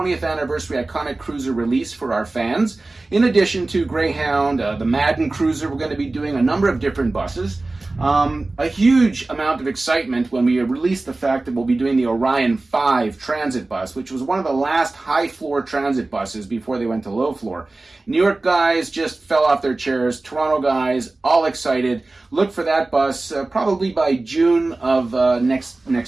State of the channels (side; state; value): left; quieter; 3.1 dB